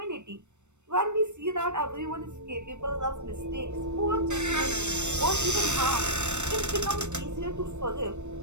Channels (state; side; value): late; left; 0.84 ms